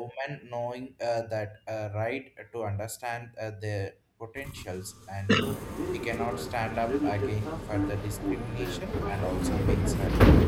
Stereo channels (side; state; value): both; identical; correlation 1.00